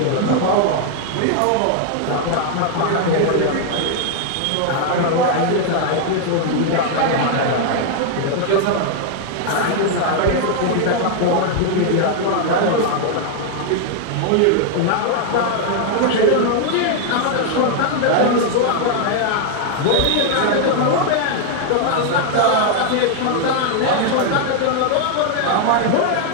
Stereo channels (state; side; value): different; both; correlation 0.00